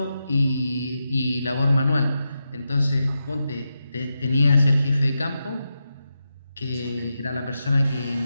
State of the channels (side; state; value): both; inverted; correlation -0.88